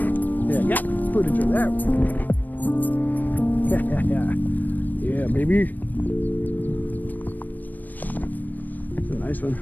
baby. It's a nice one.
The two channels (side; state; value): right; late; 0.086 ms